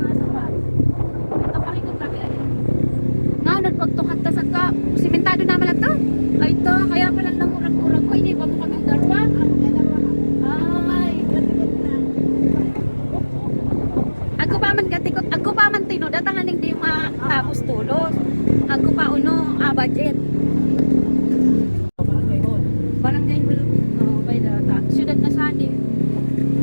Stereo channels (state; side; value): inverted; both; correlation -1.00